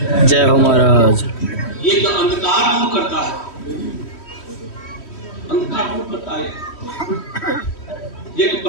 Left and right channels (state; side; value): late; right; 3.1 ms